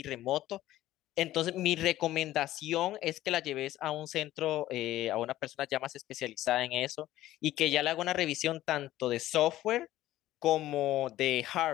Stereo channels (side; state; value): right; quieter; 14.7 dB